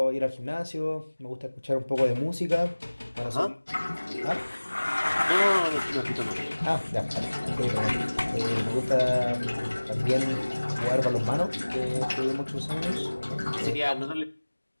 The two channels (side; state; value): both; inverted; correlation -1.00